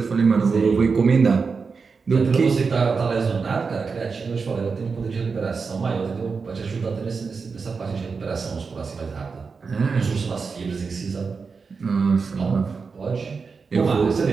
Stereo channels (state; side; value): quieter; left; 5.0 dB